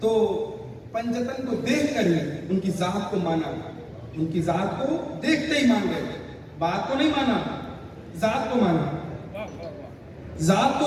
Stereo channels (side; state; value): both; identical; correlation 1.00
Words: تو پنجتن کو دیکھ کر ہی ان کی ذات کو مانا، ان کی ذات کو دیکھتے ہی مان گئے، بات کو نہیں مانا، ذات کو مانا، ذات